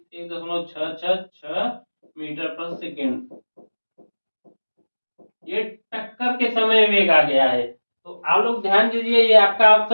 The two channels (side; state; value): both; inverted; correlation -1.00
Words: मीटर पर सेकेंड। ये टक्कर के समय वेग आ गया है। तो आप लोग ध्यान दीजिए, ये आपका